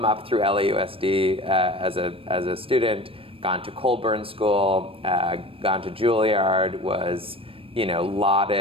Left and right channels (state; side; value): late; left; 0.27 ms